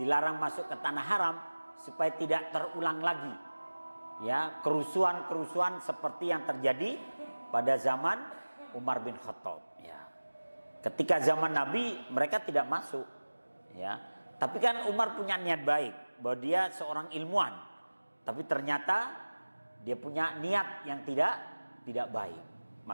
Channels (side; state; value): both; inverted; correlation -1.00